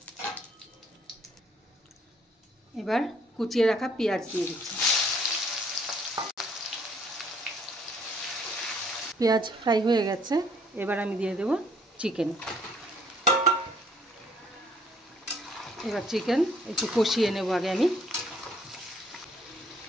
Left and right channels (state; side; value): normal; both; correlation 0.63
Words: এবার কুচিয়ে রাখা পেঁয়াজ দিয়ে দিচ্ছি। পেঁয়াজ ফ্রাই হয়ে গেছে। এবার আমি দিয়ে দেব চিকেন। এবার চিকেন একটু কষিয়ে নেব আগে আমি।